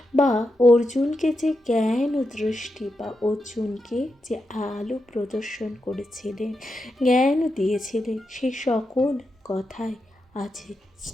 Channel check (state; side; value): normal; both; correlation 0.87